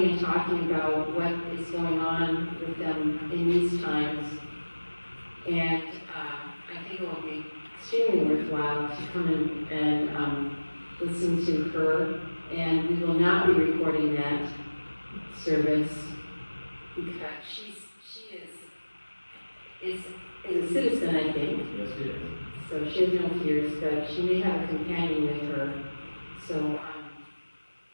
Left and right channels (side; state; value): both; inverted; correlation -1.00